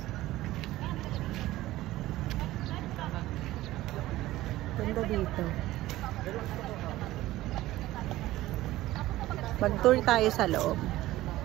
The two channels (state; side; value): quieter; left; 16.3 dB